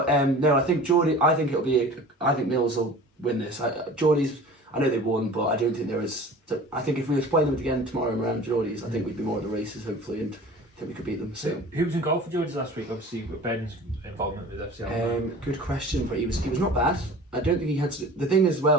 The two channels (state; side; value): normal; both; correlation 0.41